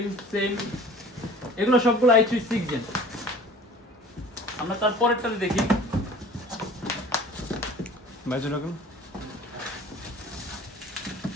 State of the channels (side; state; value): both; normal; correlation 0.45